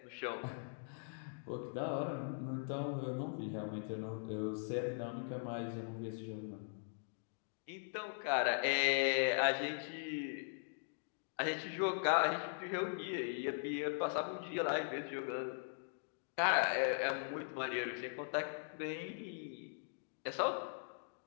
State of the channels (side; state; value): right; silent; digital silence